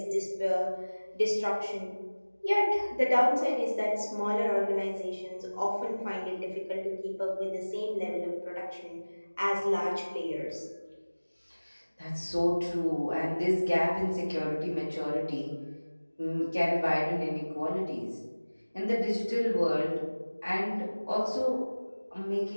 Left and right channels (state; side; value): inverted; both; correlation -1.00